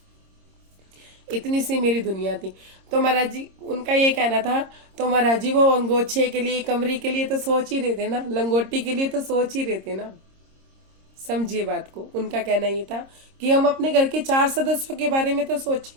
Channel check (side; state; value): left; late; 26 ms